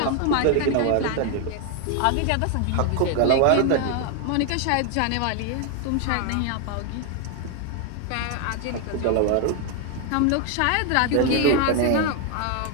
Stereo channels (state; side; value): different; both; correlation 0.01